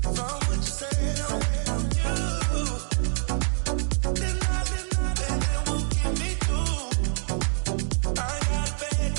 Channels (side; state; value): left; silent; 61 dB below the other